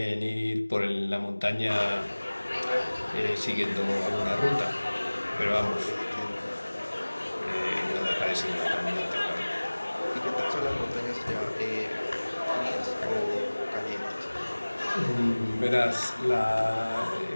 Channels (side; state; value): both; inverted; correlation -1.00